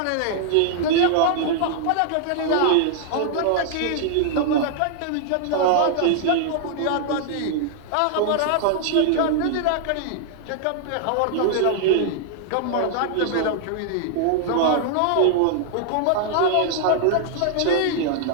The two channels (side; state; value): both; different; correlation -0.01